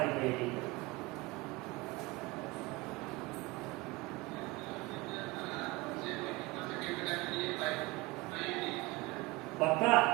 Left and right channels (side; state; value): left; quieter; 22.6 dB